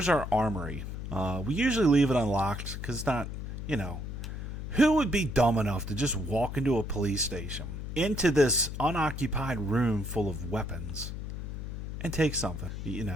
our armory. We usually leave it unlocked because it's not, you know, who would be dumb enough to just walk into a police station, into this unoccupied room full of weapons, and take something? You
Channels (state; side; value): noise; left; hum, 6 dB below the sound